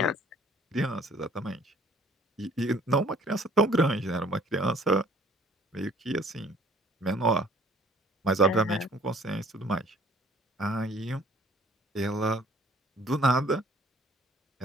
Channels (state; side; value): normal; both; correlation 0.56